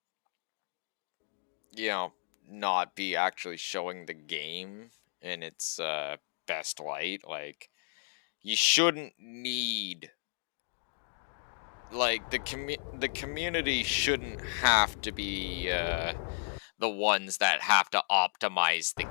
you know, not be actually showing the game in its best light. Like, you shouldn't need, like, the community shouldn't have to be the ones that have to optimize the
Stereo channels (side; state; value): right; silent; digital silence